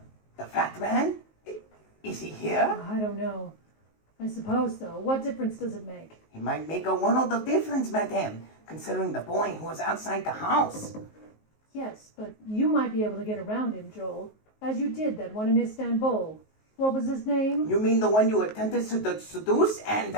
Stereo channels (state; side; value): late; right; 19 ms